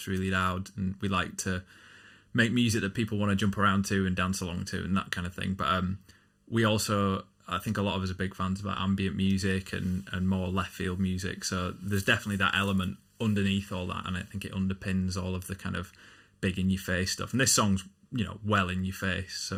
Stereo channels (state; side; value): identical; both; correlation 1.00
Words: really loud, and we like to make music that people want to jump around to and dance along to and that kind of thing. But we also, I think a lot of us are big fans about ambient music and more left field music, so there's definitely that element underneath all that, and I think it underpins all of the kind of big in your face stuff. And this song's well in your face,